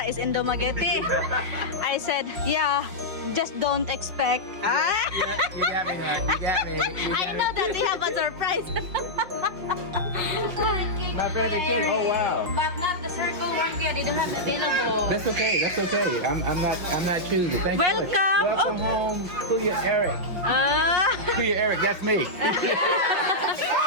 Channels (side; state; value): left; late; 5.6 ms